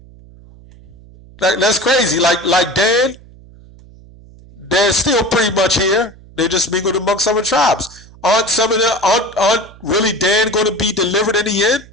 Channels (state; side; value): noise; right; hum, 23 dB below the sound